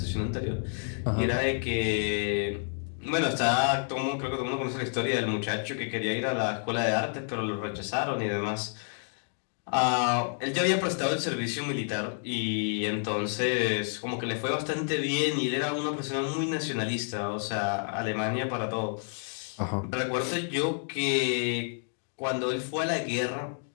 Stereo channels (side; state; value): right; silent; 58 dB below the other